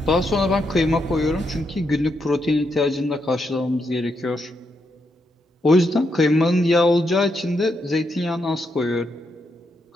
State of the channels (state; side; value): normal; both; correlation 0.81